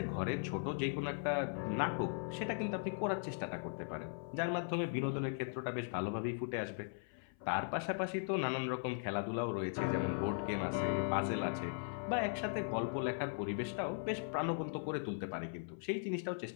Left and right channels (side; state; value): right; silent; 52 dB below the other